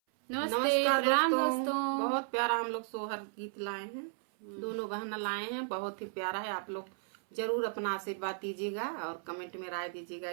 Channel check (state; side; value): silent; left; 55 dB below the other